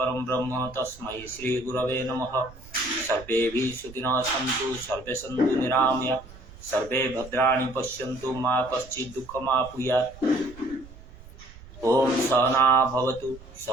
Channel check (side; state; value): right; noise; rumble, 19 dB below the sound